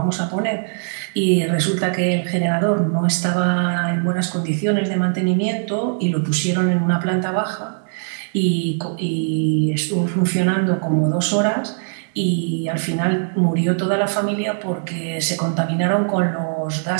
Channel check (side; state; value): left; silent; 63 dB below the other